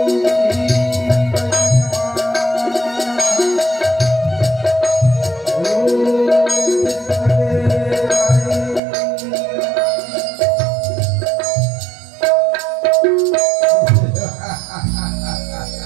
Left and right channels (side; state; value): left; drops out; at 8.8 s